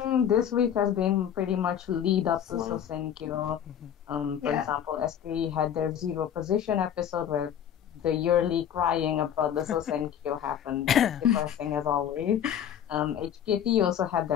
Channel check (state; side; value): quieter; right; 9.4 dB